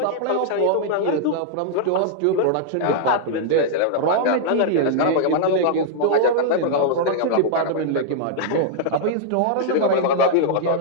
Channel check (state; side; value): different; both; correlation -0.01